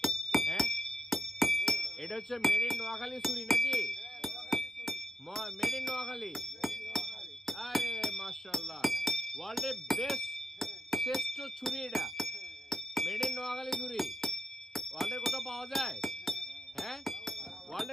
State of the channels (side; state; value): both; normal; correlation 0.82